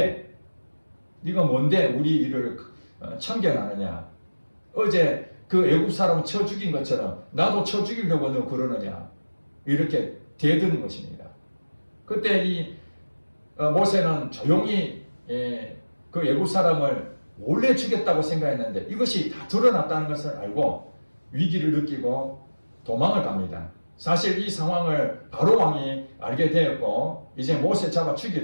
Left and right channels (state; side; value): inverted; both; correlation -1.00